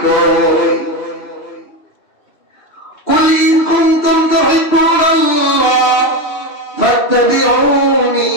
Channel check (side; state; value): right; late; 2.7 ms